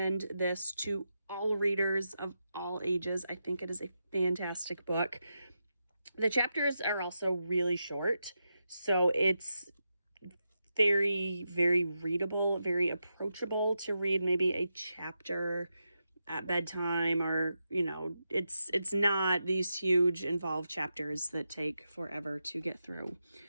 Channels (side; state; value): both; inverted; correlation -0.87